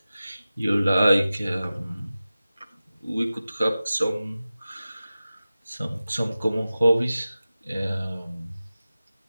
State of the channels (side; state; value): both; inverted; correlation -0.95